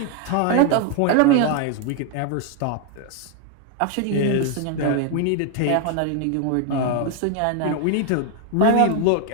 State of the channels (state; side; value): different; both; correlation 0.00